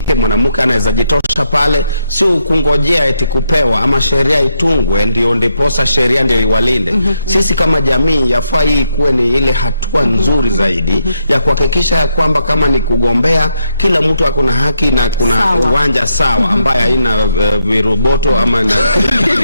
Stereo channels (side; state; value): both; inverted; correlation -0.79